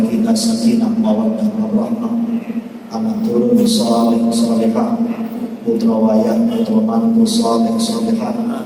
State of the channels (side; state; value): both; identical; correlation 1.00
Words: kita sakinah mawaddah warahmah, anak turun saleh salehah, putra wayah putra mantu saleh salehah,